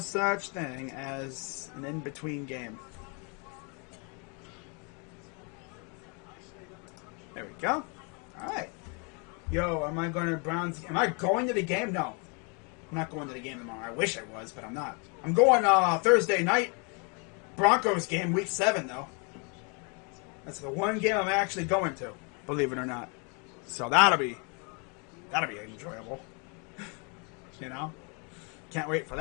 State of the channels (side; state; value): right; quieter; 34.8 dB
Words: thing as an in between game. There we go. All right. Yo, am I going to Browns? Am I going to the game? No. I'm not going to the game tomorrow. I wish I was, but I'm not. I'm going Thursday night. Broncos game, week 7, though. That's the one game I'm actually going to, believe it or not. So that'll be enjoyable. You know? Can't wait for